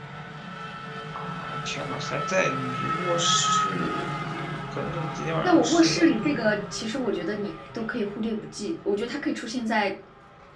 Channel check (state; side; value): identical; both; correlation 1.00